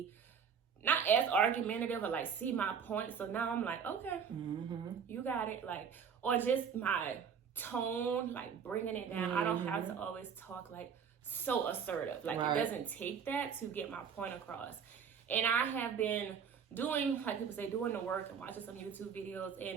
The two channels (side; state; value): left; quieter; 7.0 dB